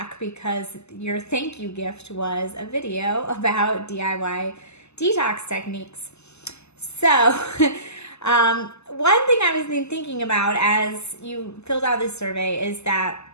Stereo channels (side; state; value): right; late; 0.80 ms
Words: because your thank you gift was a video about DIY detox techniques. So one thing I was thinking about as you filled out this survey is that